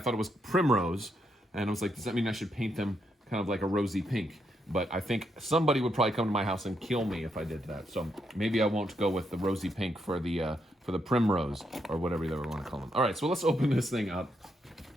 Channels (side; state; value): both; normal; correlation 0.79